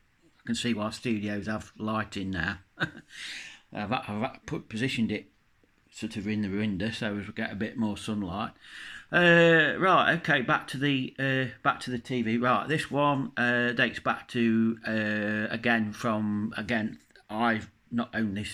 can see why studios have lighting now. Positioned it sort of in the window so as we get a bit more sunlight. Right, okay, back to the TV. Right, this one dates back to I've not owned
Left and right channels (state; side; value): identical; both; correlation 1.00